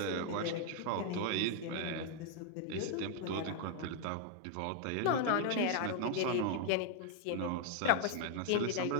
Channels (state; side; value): different; both; correlation 0.00